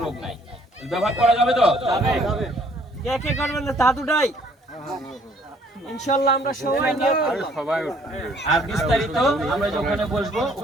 রোগ নাই। ব্যবহার করা যাবে তো? যাবে। কে কে করবেন না তা দুটাই ইনশাআল্লাহ আমরা সবাই নিয়ে আর বিস্তারিত আমরা ওখানে বসবো,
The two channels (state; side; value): normal; both; correlation 0.61